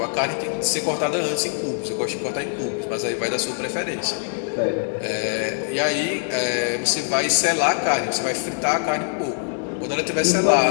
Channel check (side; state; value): right; silent; digital silence